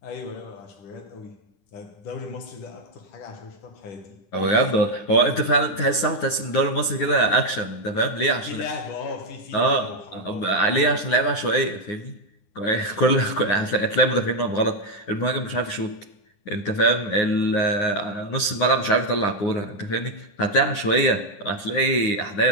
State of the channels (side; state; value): right; late; 10 ms